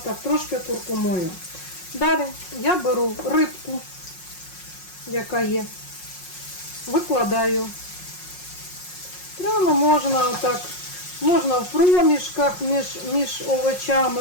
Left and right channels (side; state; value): right; late; 5.5 ms